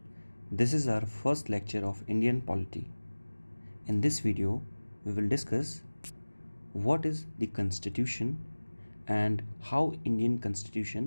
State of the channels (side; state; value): both; inverted; correlation -1.00